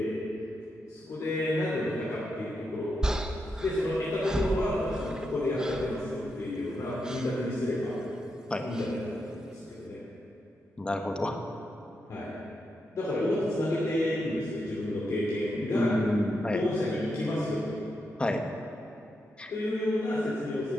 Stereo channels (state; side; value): normal; both; correlation 0.84